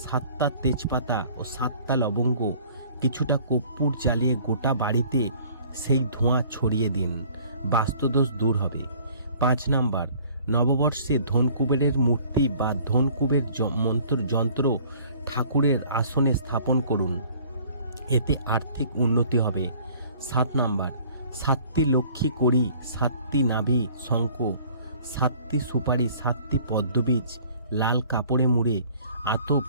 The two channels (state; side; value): inverted; both; correlation -0.53